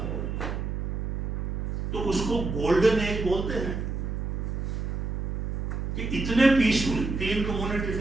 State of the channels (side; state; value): right; noise; hum, 2 dB below the sound